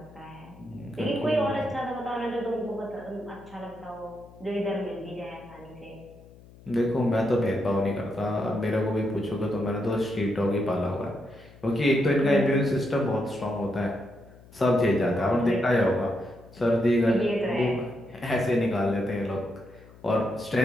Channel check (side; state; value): left; noise; hum, 22 dB below the sound